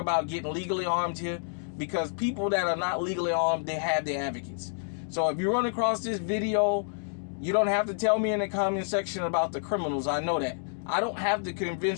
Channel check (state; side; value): silent; right; digital silence